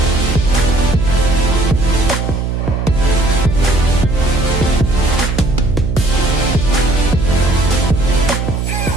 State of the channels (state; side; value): noise; right; hum, 2 dB below the sound